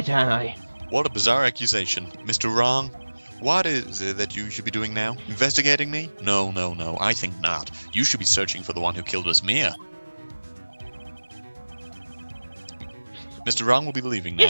aren't I? What a bizarre accusation. Mr. Wrong? What is it that you should be doing now? Investigating me? No, no, no. I think not. You should be searching for the one who killed Miss Mia. Mr. Wrong will be leaving now.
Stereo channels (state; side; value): inverted; both; correlation -1.00